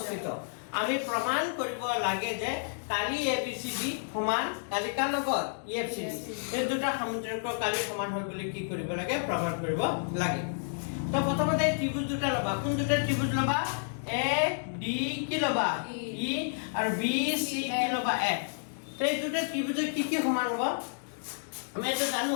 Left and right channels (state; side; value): silent; right; digital silence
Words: আমি প্ৰমাণ কৰিব লাগে যে কালি এবিসিডি সমান কালি কাৰ লগত ইএফসিডি এই দুটা সামুদ্ৰিকৰ কালি সমান হয় বুলি কি কৰিব লাগে প্ৰমাণ কৰিব লাগে তো প্ৰথমতে ত্ৰিভুজ দুটা লবা কোন দুটা ত্ৰিভুজ লবা এ ডি কি লবা ই আৰু বি সি কি লবা এফ তো এই দুটা ত্ৰিভুজ কি সমান হ'ব আমি এটা